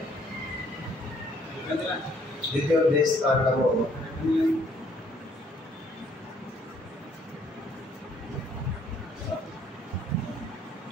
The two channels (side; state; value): both; normal; correlation 0.64